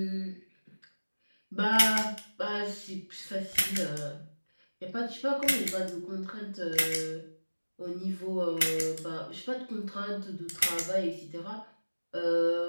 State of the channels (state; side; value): inverted; both; correlation -1.00